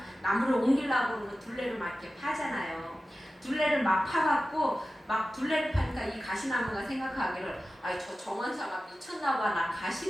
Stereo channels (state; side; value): normal; both; correlation 0.95